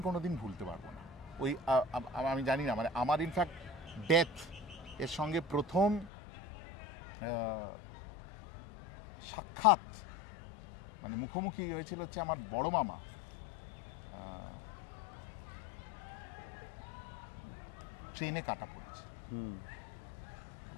কোনোদিন ভুলতে পারবো না। ওই আমি জানি না, মানে আমার ইনফ্যাক্ট ডেথ এর সঙ্গে প্রথম সাক্ষাৎ মানে মুখোমুখি হয়েছিল হচ্ছে আমার বড় মামা। ট্রেনে কাটা পড়েছে।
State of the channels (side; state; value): right; drops out; at 6.1 s